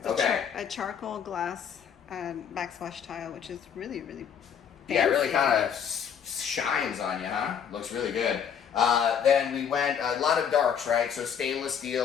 Okay. a charcoal glass backsplash tile, which is really, really fancy. Yeah, it really kind of shines on you, huh? Looks really good. Then we went a lot of darks, right? So stainless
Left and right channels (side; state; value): right; quieter; 7.8 dB